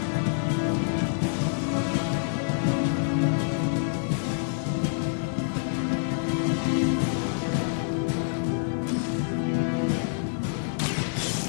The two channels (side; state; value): right; silent; 60 dB below the other